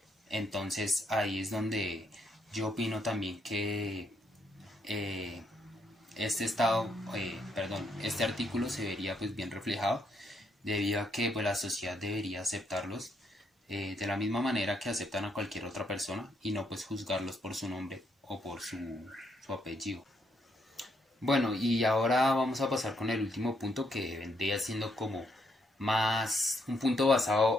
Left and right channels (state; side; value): normal; both; correlation 0.75